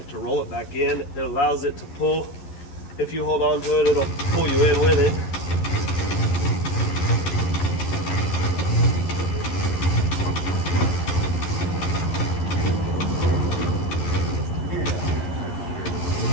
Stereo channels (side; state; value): right; late; 11 ms